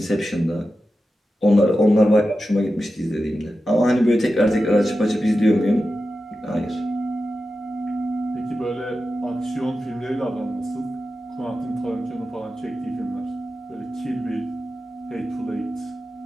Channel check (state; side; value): normal; both; correlation 0.92